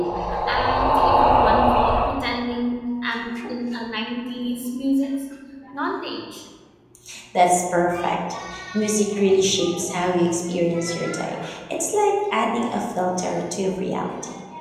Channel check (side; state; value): both; identical; correlation 1.00